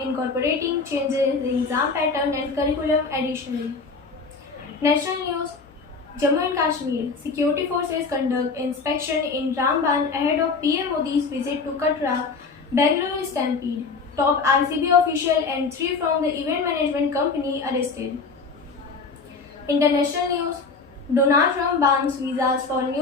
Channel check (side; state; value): right; quieter; 4.5 dB